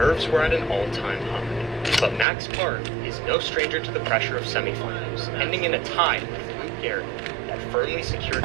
were at an all-time high. But Max Park is no stranger to the pressure of semifinals, ending in a tie with Luke Garrett that firmly secured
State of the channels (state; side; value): drops out; left; at 2.2 s